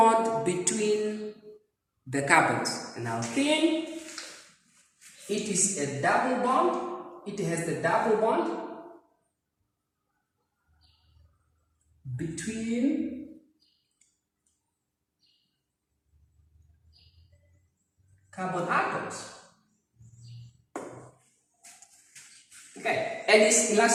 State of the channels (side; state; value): both; identical; correlation 1.00